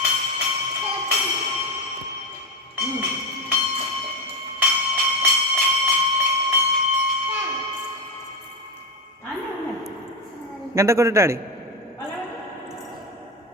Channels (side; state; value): both; normal; correlation 0.15